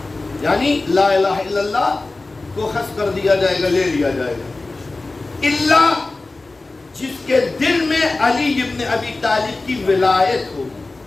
یعنی لا الہ الا اللہ کو حذف کر دیا جائے گا، لے لیا جائے گا. اللہ جس کے دل میں علی ابن ابی طالب کی ولایت ہوگی.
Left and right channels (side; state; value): right; quieter; 3.3 dB